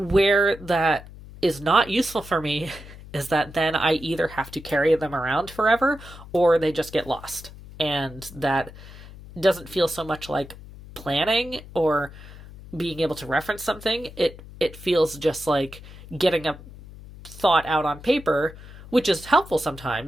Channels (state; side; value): noise; left; hum, 17 dB below the sound